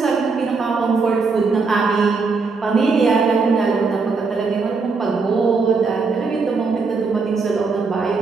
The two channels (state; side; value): quieter; left; 4.5 dB